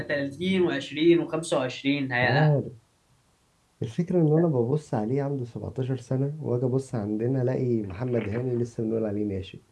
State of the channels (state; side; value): identical; both; correlation 1.00